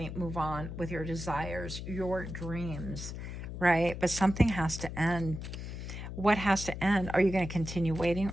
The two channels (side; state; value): left; noise; hum, 8 dB below the sound